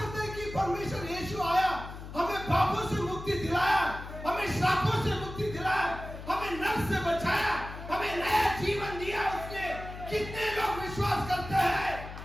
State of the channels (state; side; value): noise; left; hum, 11 dB below the sound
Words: हैं कि परमेश्वर यीशु आया, हमें पापों से मुक्ति दिलाया, हमें श्रापों से मुक्ति दिलाया, हमें नरक से बचाया, हमें नया जीवन दिया उसने? कितने लोग विश्वास करते हैं?